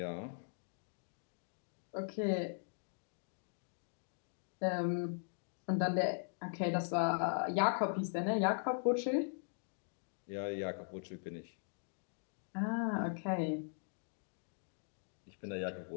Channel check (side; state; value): right; silent; digital silence